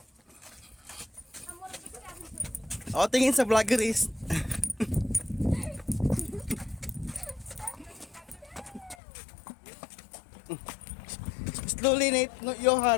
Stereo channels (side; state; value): right; drops out; at 9.0 s